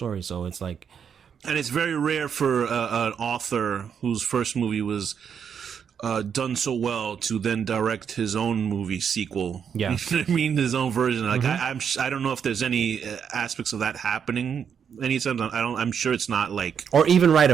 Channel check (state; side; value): quieter; left; 7.5 dB